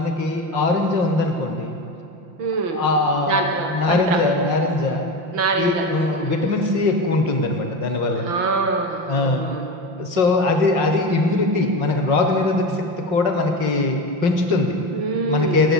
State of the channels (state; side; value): late; left; 5.6 ms